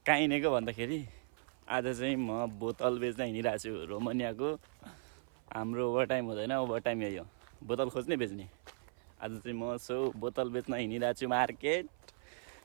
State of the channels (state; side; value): silent; left; 53 dB below the other